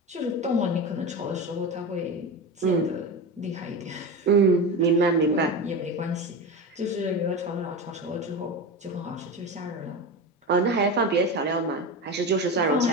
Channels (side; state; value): both; normal; correlation 0.23